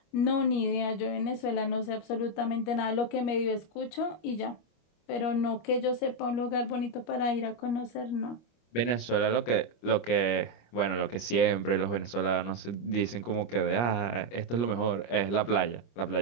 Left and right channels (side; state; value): right; late; 25 ms